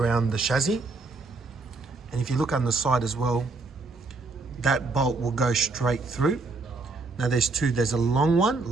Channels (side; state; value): left; quieter; 3.7 dB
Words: the chassis. And if you look on the side as well, that bolt will go straight through. Now there's two, there's a